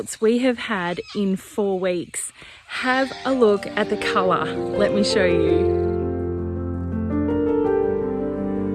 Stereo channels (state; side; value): identical; both; correlation 1.00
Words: we have had in 4 weeks. Have a look at the colour. Let me show you.